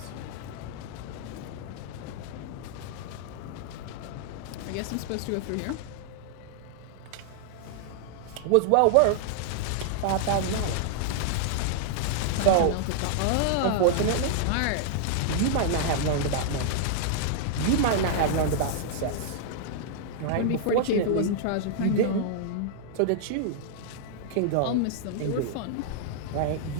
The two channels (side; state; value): both; different; correlation -0.01